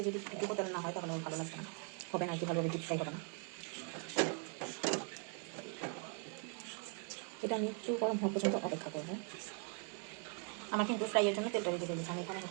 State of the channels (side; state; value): left; quieter; 39.5 dB